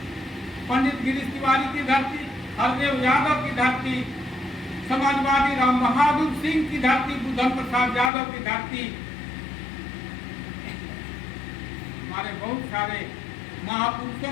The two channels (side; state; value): right; drops out; at 8.1 s